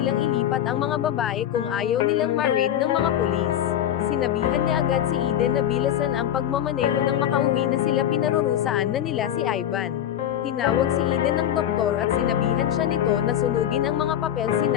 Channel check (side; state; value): right; quieter; 10.7 dB